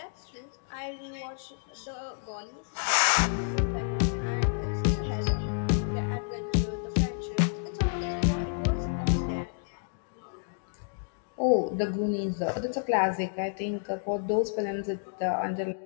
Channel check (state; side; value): silent; right; digital silence